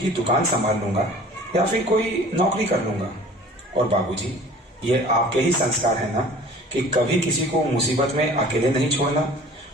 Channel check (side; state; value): both; normal; correlation 0.46